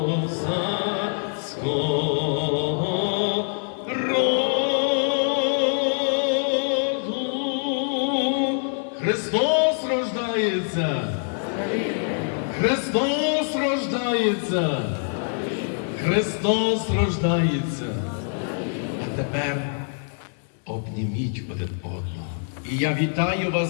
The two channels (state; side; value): silent; right; 62 dB below the other